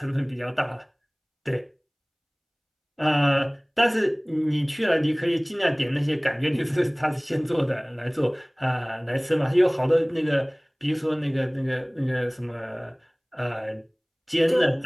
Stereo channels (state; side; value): identical; both; correlation 1.00